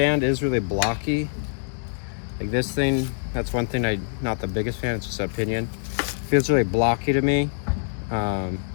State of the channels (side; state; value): right; silent; digital silence